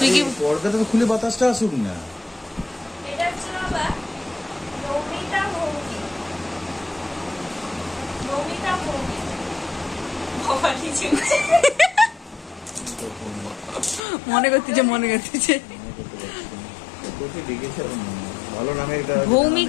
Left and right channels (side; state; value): right; drops out; at 14.0 s